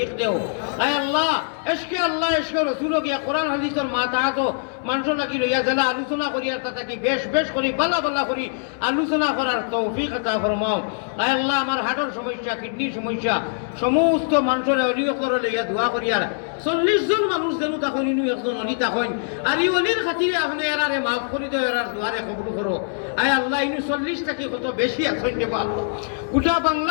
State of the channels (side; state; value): right; silent; 64 dB below the other